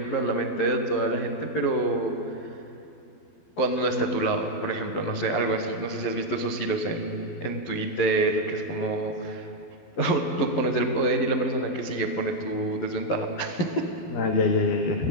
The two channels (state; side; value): late; right; 12 ms